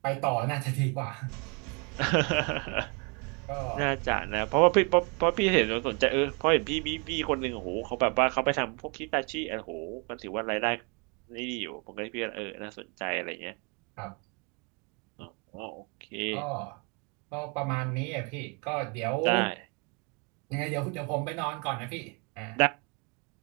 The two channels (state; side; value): quieter; left; 33.0 dB